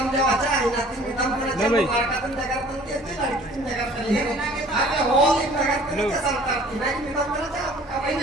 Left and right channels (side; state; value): both; normal; correlation 0.51